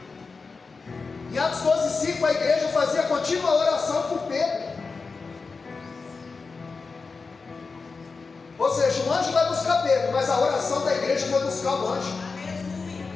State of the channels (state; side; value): quieter; right; 4.5 dB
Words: Em Atos 12:5, a igreja fazia contínua oração por Pedro. Ou seja, o anjo vai buscar Pedro, mas a oração da igreja vai buscar o anjo.